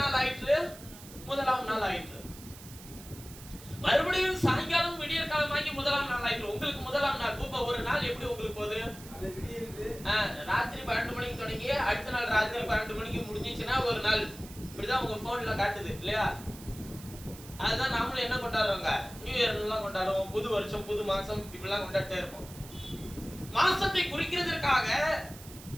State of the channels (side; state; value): right; noise; hiss, 17 dB below the sound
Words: ஆயிற்று? முதலாம் நாள் ஆயிற்று. மறுபடியும் சாயங்காலம் விடியற்காலமாகி முதலாம் நாள் ஆயிற்று. உங்களுக்கு முதலாம் நாள் இப்ப ஒரு நாள் எப்படி உங்களுக்கு போகுது? ராத்திரி 12 மணிக்கு தொடங்கி அடுத்த நாள் ராத்திரி 12 மணிக்கு முடிஞ்சிச்சுன்னா ஒரு நாள். இப்படிதான் உங்க போன்ல காட்டுது இல்லையா? அதுதான் நாமளும் என்ன கொண்டாடுறோங்க? நியூ இயர் எல்லாம் கொண்டாடுவோம், புது வருஷம், புது மாசம், இப்படிலாம் கொண்டாடிட்டே இருப்போம். மாசத்தை குறிக்கிறதற்காக